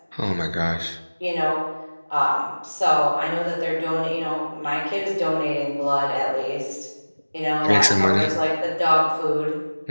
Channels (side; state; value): both; inverted; correlation -1.00